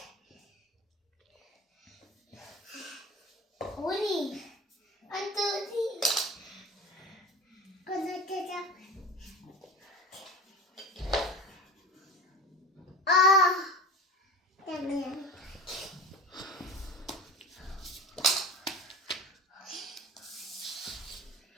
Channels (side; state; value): both; normal; correlation 0.34